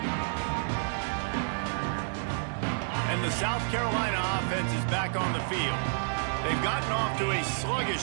And the South Carolina offense is back on the field. They've gotten off to a sluggish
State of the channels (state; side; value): silent; left; digital silence